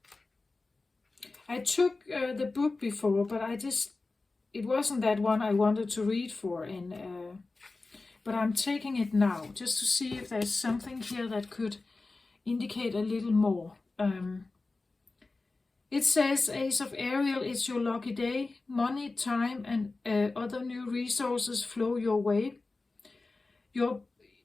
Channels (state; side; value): quieter; right; 3.5 dB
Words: I took the book before, but it wasn't that one I wanted to read for, but I'm taking it now just to see if there's something here that could indicate a little more. It says, Ace of Ariel, it's your lucky day. Money, time, and other new resources flow your way. Your